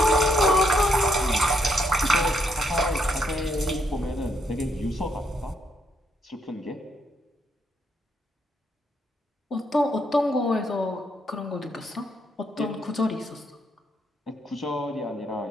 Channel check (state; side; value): normal; both; correlation 0.76